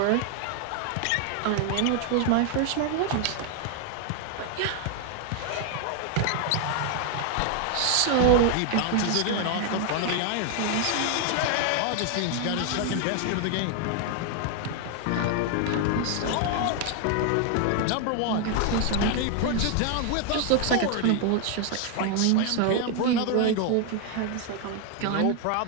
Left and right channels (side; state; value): both; different; correlation 0.00